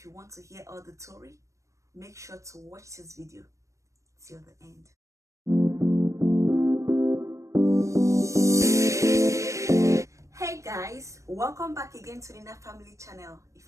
you want to hear all the story, make sure to watch this video till the end. Hey guys, welcome back again to the Nina Family channel. If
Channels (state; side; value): late; left; 0.15 ms